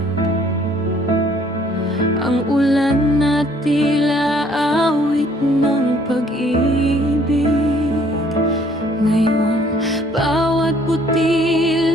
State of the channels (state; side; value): normal; both; correlation 0.61